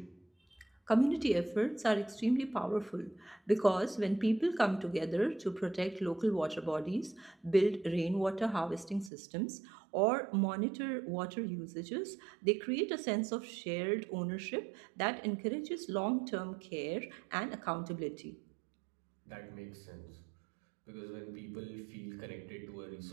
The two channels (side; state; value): left; drops out; at 9.1 s